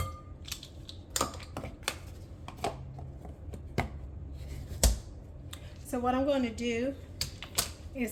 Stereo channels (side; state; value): both; identical; correlation 1.00